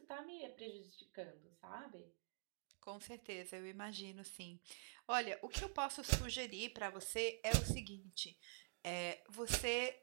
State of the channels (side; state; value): left; silent; digital silence